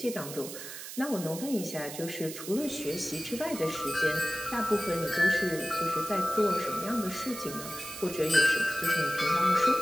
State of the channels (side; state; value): right; noise; hiss, 10 dB below the sound